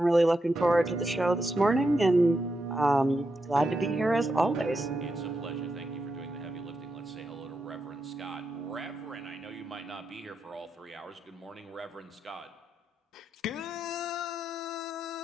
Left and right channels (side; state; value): both; normal; correlation 0.85